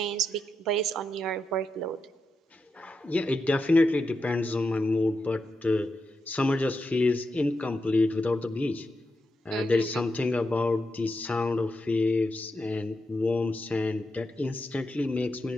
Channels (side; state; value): both; normal; correlation 0.86